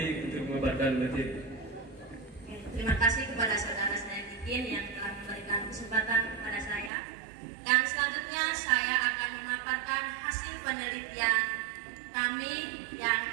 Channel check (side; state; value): left; drops out; at 6.9 s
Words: untuk memaparkan materi. Terima kasih kepada saudara saya Kikin yang telah memberikan kesempatan kepada saya. Dan selanjutnya saya akan memaparkan hasil penelitian kami yang